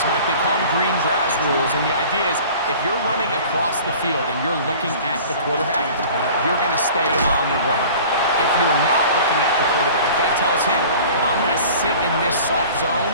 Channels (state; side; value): inverted; both; correlation -0.44